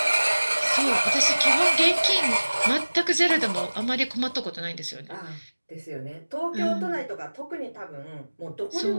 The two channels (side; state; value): both; inverted; correlation -1.00